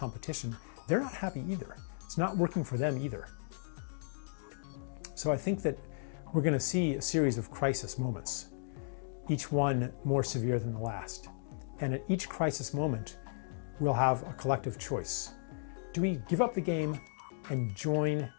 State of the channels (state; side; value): silent; right; digital silence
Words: they're not happy either. It's not working for them either. So I think that we're going to see a series of crisis moments, each one more severe than the last. And at each crisis moment, we'll have a collective choice. Do we give up the game and join